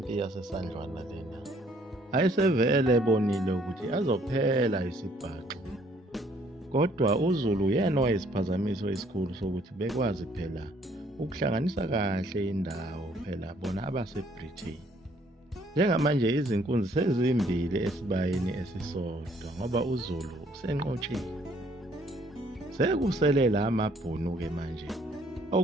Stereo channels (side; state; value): both; normal; correlation 0.63